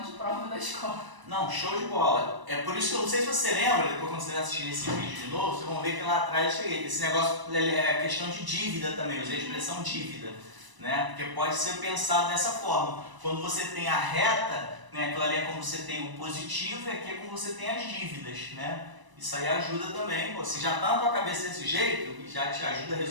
de prova da escola. Não, show de bola. É por isso que eu não sei se você lembra, depois quando você assistir esse vídeo de novo, vocês vão ver que lá atrás eu cheguei. Esse negócio é questão de dívida também, eu usei a expressão dívida, né? Porque pode ser pensado dessa forma. Quando você tem a reta, né, aquilo ali é como você tem o positivo e aqui é como você tem as dívidas, né? Isso aí ajuda também. Pô, se já está na tua cabeça desse jeito, e já te ajuda a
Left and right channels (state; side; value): late; left; 1.0 ms